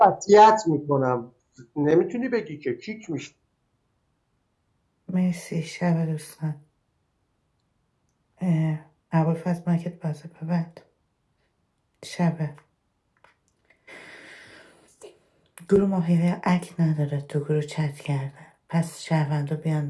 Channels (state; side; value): identical; both; correlation 1.00